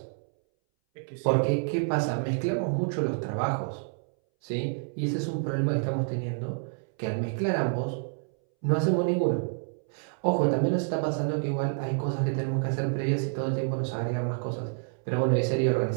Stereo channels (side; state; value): left; silent; 59 dB below the other